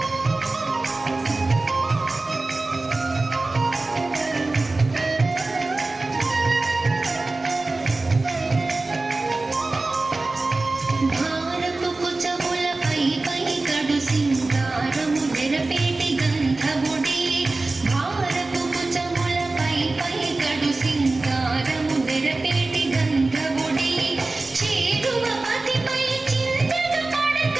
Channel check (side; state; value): left; quieter; 3.2 dB